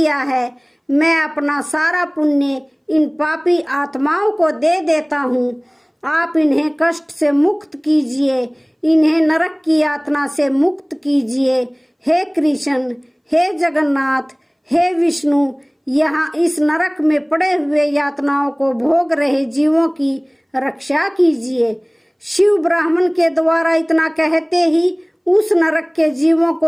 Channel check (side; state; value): both; identical; correlation 1.00